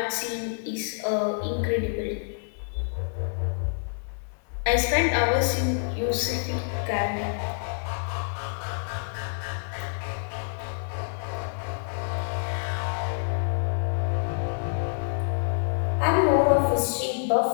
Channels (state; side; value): silent; right; 60 dB below the other